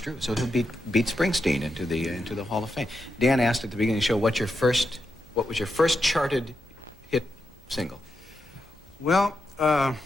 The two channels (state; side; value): normal; both; correlation 0.86